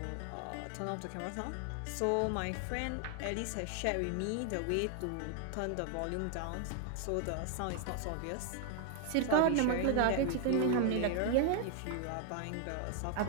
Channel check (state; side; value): different; both; correlation 0.00